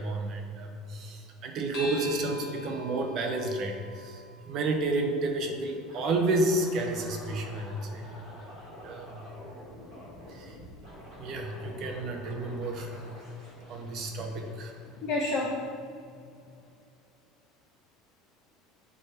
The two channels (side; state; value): both; normal; correlation 0.38